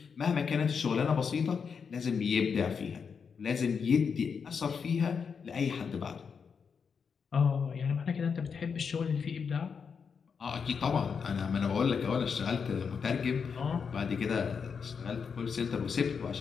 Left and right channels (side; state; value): right; quieter; 6.1 dB